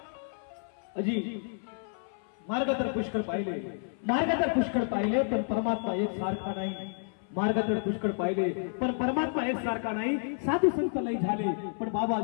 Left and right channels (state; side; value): silent; right; 57 dB below the other